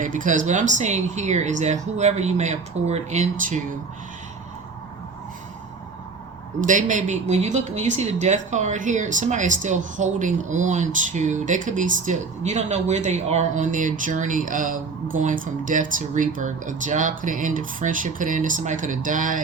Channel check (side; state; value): left; quieter; 4.6 dB